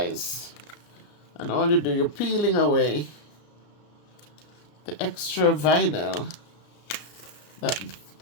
And all you do, you're peeling away the extra vinyl that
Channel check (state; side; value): late; right; 33 ms